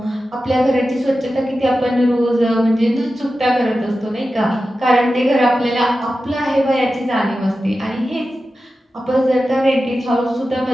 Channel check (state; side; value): normal; both; correlation 0.93